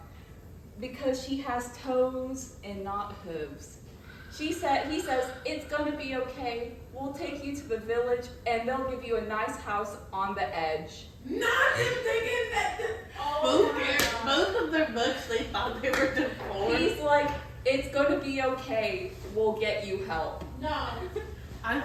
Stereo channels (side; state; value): both; identical; correlation 1.00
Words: because she has toes and not hooves. He says, it's gonna be okay. We'll take you to the village and they'll give you a nice house on the edge. Not him thinking that both of their books, they thought they were deformed. He's like, it's gonna be okay. We'll get you help. No. I